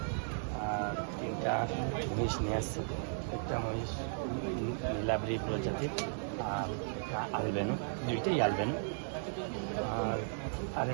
আর 3টা মহিষ নিয়ে আসছি। একটা মহিষ নীলাদ্রি প্রজাতির আর একটা আলবেনো, 2টাই আলবেনো। আর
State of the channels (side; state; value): left; silent; 54 dB below the other